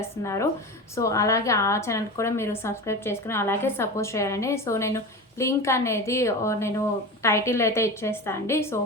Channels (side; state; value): both; normal; correlation 0.28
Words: సో అలాగే ఆ ఛానల్కి కూడా మీరు సబ్స్క్రైబ్ చేసుకుని అలాగే సపోర్ట్ చేయాలండి. సో నేను లింక్ అనేది నేను టైటిల్ అయితే ఇచ్చేస్తాను అండి. సో